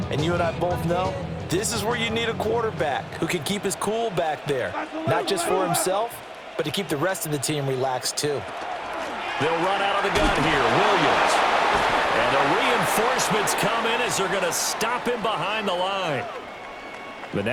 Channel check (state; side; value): identical; both; correlation 1.00